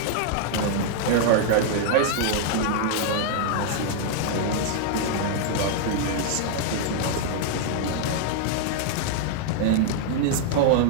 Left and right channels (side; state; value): both; different; correlation -0.01